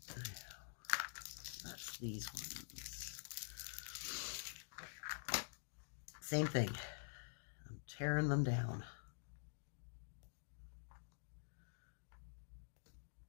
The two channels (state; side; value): silent; right; digital silence